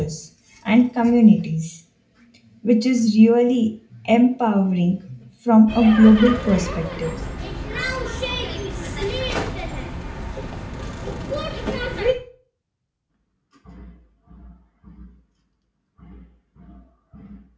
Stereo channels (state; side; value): identical; both; correlation 1.00